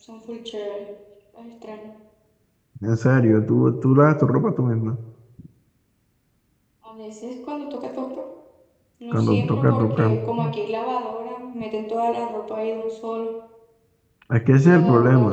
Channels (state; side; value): identical; both; correlation 1.00